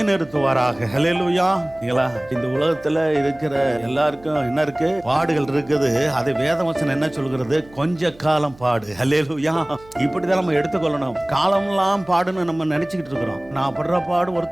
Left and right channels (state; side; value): noise; right; hum, 24 dB below the sound